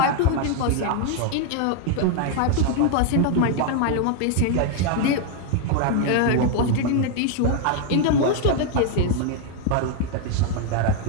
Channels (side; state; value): both; different; correlation 0.01